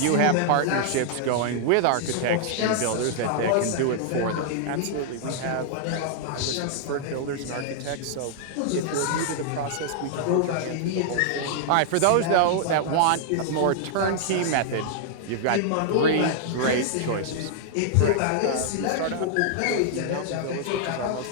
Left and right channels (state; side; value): different; both; correlation -0.01